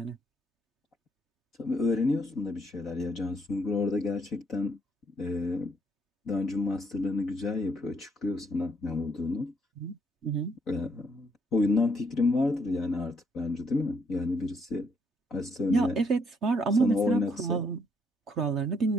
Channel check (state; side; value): normal; both; correlation 0.71